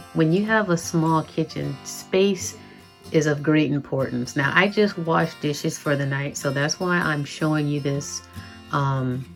when you have a small kitchen, space is of great importance. Now, I just washed dishes for the night, so that's why I'm showing you this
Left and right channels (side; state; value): both; identical; correlation 1.00